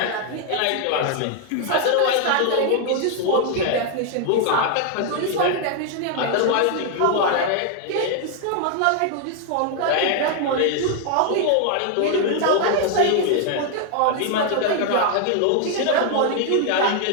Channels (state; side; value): different; both; correlation 0.00